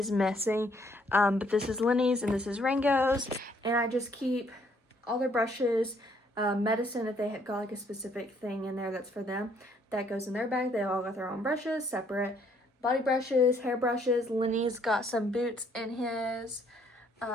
missing, but this is Lenny's and this is Rango's. And I just keep all their brushes, medicine if they have got like a specific thing in there that's for them. That goes in their bag. They all got their own brushes, separate. Body brushes, hair brushes. Lenny's got some boots in his.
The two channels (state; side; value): normal; both; correlation 0.66